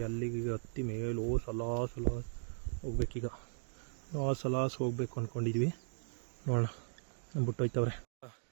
ಅಲ್ಲಿಗೆ ಹತ್ತಿ ಮೇಲೋ ಸಲಾಸ್ ಹೋಗ್ಬೇಕೀಗ. ಸಲಾಸ್ ಹೋಗ್ಬೇಕು ಅಂದ್ಕೊಂಡಿದ್ವಿ. ನೋಡೋಣ ನಮ್ಮ ಬಿಟ್ಟೋಯ್ತವ್ರೆ.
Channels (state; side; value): silent; left; digital silence